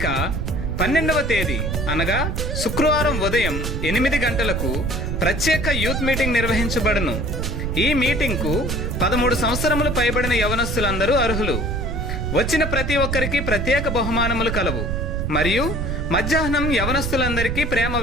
12వ తేదీ అనగా శుక్రవారం ఉదయం 8 గంటలకు ప్రత్యేక యూత్ మీటింగ్ నిర్వహించబడును. ఈ మీటింగ్కు 13 సంవత్సరములు పైబడిన యవనస్తులందరూ అర్హులు. వచ్చిన ప్రతి ఒక్కరికి ప్రత్యేక బహుమానములు కలవు మరియు మధ్యాహ్నం యవనస్తులందరికీ ప్రేమ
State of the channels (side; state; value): right; noise; rumble, 2 dB below the sound